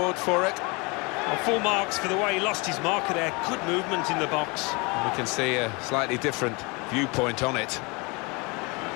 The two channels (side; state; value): right; quieter; 28.4 dB